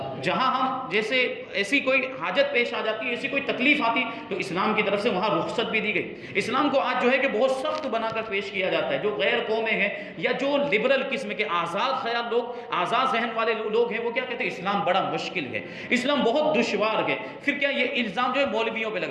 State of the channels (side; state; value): both; identical; correlation 1.00